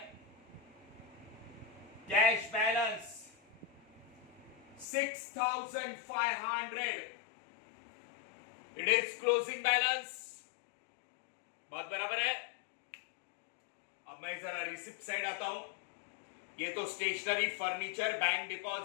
Cash balance 6,500, it is closing balance. बात बराबर है। अब मैं जरा रिसिप्ट साइड आता हूं। ये तो stationery, furniture, bank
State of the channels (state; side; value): drops out; right; at 4.9 s